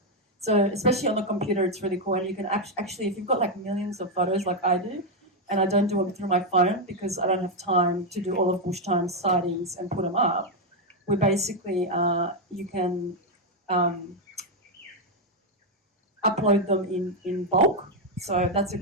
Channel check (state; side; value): normal; both; correlation 0.03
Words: So especially on the computer, it's really cool, and you can actually, if you've got like millions of photos like I do, and I don't do it through my phone because I don't have time to do all of Bushtime sightings and put them up. We basically you can upload them in bulk. So that's a